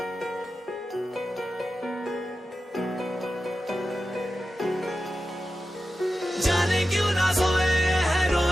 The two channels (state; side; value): normal; both; correlation 0.92